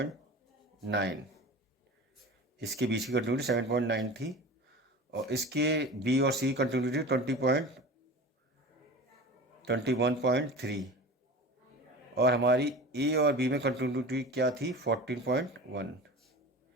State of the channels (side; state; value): both; normal; correlation 0.34